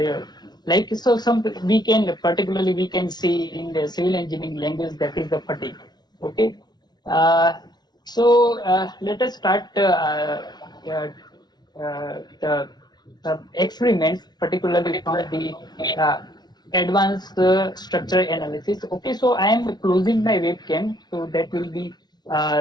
like so, some particularly we can see in the civil engineering language that is the fatigue. Okay, let us start the experiments, particularly from the uh, advanced structure analysis. Okay, so I am closing my webcam, so that will be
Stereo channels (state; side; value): late; right; 0.20 ms